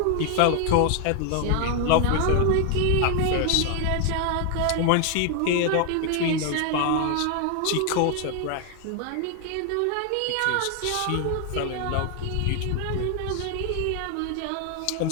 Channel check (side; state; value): both; different; correlation 0.00